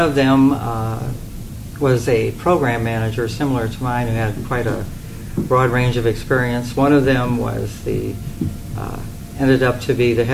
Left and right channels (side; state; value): both; identical; correlation 1.00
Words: them was a program manager similar to mine who had quite a broad range of experience. One of them was ended up to be the